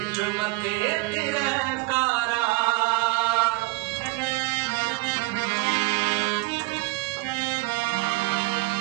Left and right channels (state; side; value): quieter; left; 23.1 dB